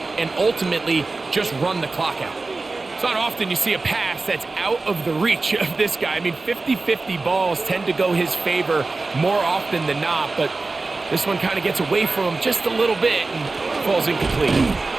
and ultimately just run the clock out. It's not often you see a pass that's out of the reach of this guy. I mean, 50-50 balls tend to go his favor more often than not, but this one kind of gets away from him just a little bit and falls incomplete.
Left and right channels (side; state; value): left; quieter; 3.6 dB